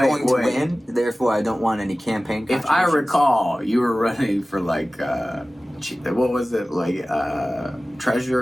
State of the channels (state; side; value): normal; both; correlation 0.97